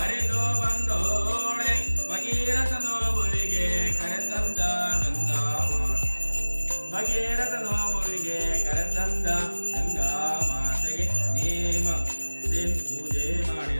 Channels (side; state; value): both; inverted; correlation -1.00